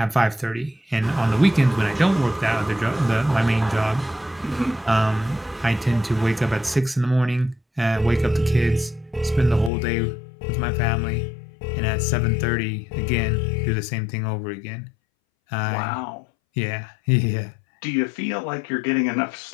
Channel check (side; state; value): right; drops out; at 9.7 s